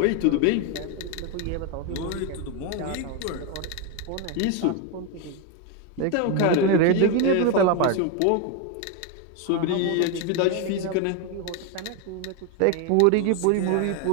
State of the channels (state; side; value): different; both; correlation 0.02